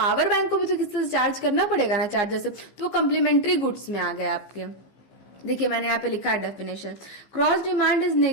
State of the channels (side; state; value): right; late; 15 ms